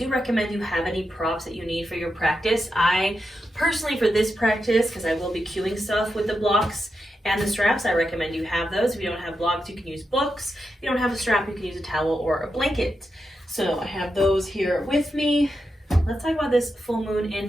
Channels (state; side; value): normal; both; correlation 0.87